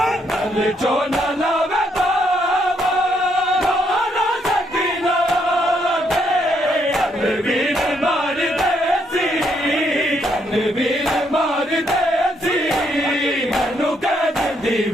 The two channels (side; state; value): both; normal; correlation 0.74